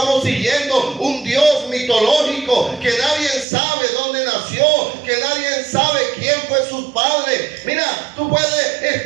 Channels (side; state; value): left; drops out; at 3.5 s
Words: siguiendo un Dios mitológico, que nadie sabe dónde nació, que nadie sabe quién fue sus padres. Mira, tú puedes